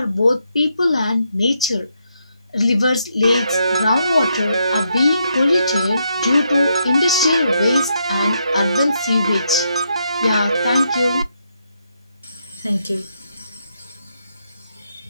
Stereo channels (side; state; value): both; inverted; correlation -0.79